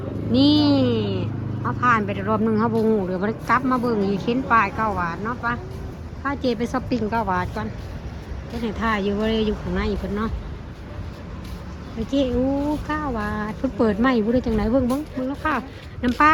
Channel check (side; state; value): both; identical; correlation 1.00